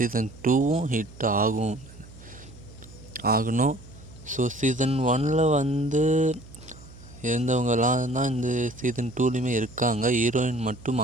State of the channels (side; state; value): right; noise; hum, 20 dB below the sound